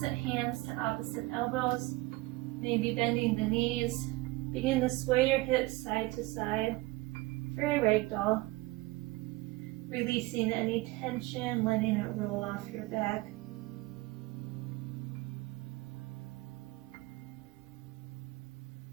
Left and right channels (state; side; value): quieter; left; 21.1 dB